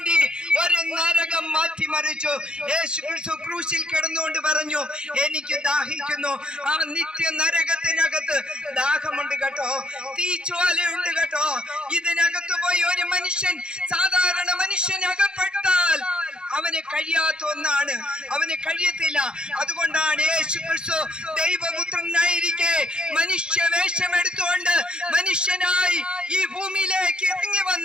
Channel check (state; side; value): late; left; 0.049 ms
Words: ഒരു നരകം മാറ്റിമറിച്ചു. യേശു ക്രിസ്തു ക്രൂശിൽ കിടന്നുകൊണ്ട് പറഞ്ഞു, എനിക്ക് ദാഹിക്കുന്നു. ആ നിത്യ നരകത്തിനകത്ത് ദാഹമുണ്ട് കേട്ടോ, തീജ്വാലയുണ്ട് കേട്ടോ. ഇതിനകത്ത് പോയി ഒരു മനുഷ്യൻ, സാധാരണ മനുഷ്യൻ അകപ്പെട്ടാൽ അവന് കഴിയാത്ത ഒന്നാണ്, അവന് കഴിയത്തില്ല. അതുകൊണ്ടാണ് യേശു ക്രിസ്തു ദൈവപുത്രനായിരിക്കെ മനുഷ്യവേഷം എടുത്തുകൊണ്ട് മനുഷ്യനായി ഈ ഭൂമിയിലേക്ക് ഇറങ്ങി